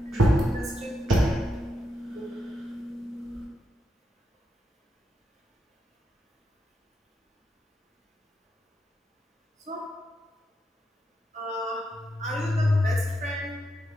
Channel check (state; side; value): normal; both; correlation 0.84